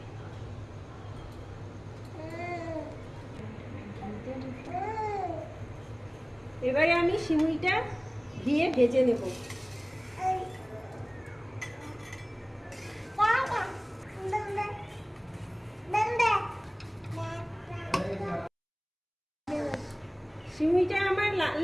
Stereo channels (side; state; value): both; identical; correlation 1.00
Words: এবারে আমি সিমুইটা দিয়ে ভেজে নেব। সিমুইটা আমার লাল